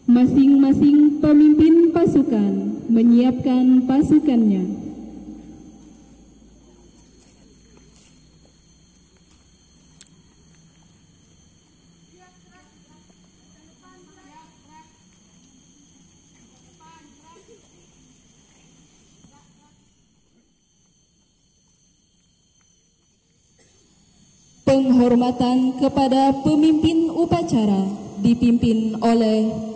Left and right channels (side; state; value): both; identical; correlation 1.00